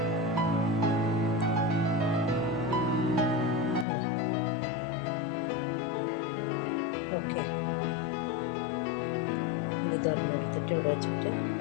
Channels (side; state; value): right; drops out; at 3.9 s